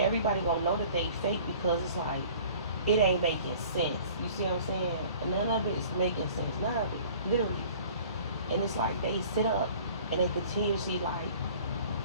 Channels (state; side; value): inverted; both; correlation -0.48